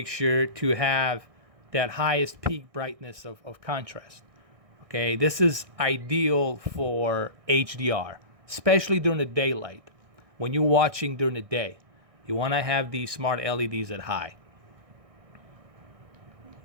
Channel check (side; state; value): left; late; 1.6 ms